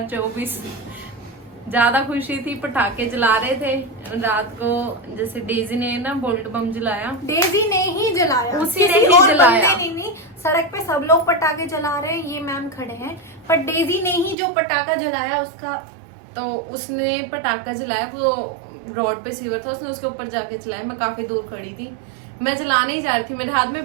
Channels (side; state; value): left; drops out; at 14.4 s